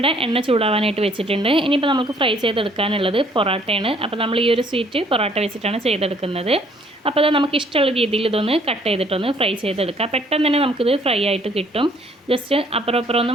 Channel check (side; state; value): both; normal; correlation 0.62